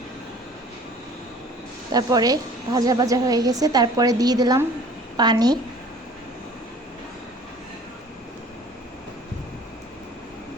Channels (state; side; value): normal; both; correlation 0.48